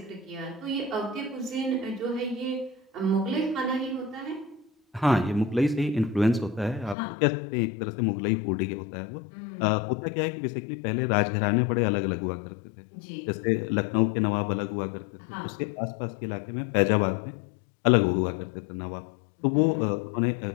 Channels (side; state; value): right; drops out; at 7.0 s